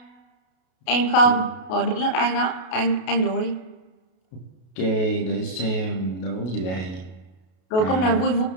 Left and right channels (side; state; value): right; late; 32 ms